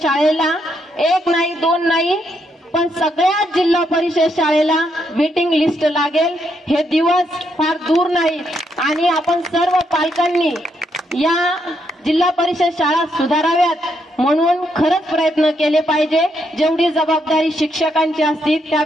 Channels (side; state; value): both; normal; correlation 0.77